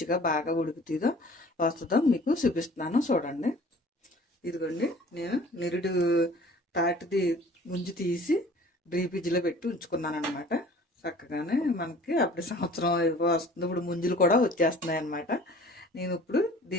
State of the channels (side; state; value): both; normal; correlation 0.48